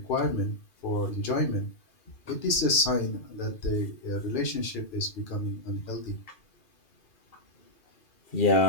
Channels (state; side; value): late; right; 2.4 ms